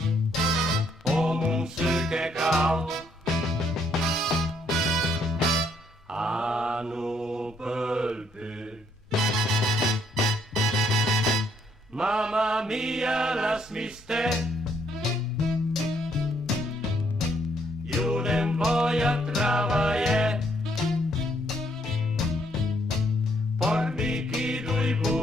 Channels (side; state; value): both; normal; correlation 0.70